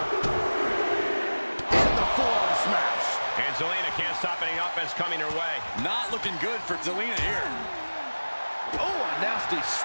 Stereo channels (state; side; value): inverted; both; correlation -1.00